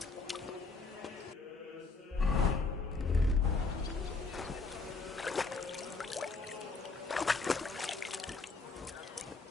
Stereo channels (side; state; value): right; quieter; 3.9 dB